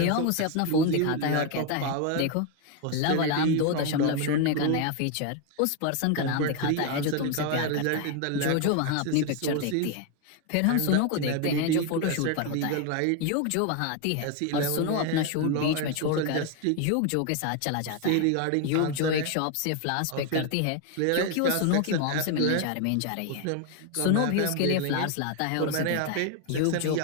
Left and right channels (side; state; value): both; different; correlation 0.01